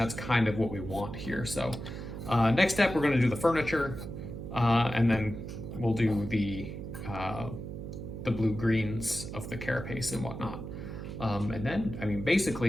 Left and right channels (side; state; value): right; noise; hum, 8 dB below the sound